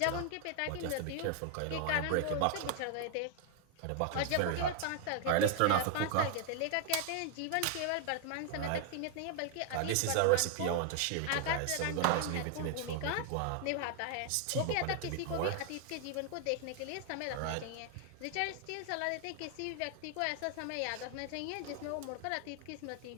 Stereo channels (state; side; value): different; both; correlation 0.00